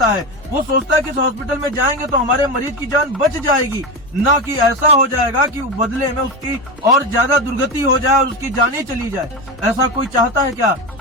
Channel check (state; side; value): normal; both; correlation 0.18